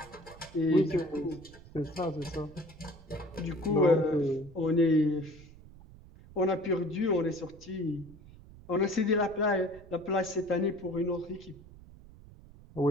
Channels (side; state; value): right; noise; rumble, 20 dB below the sound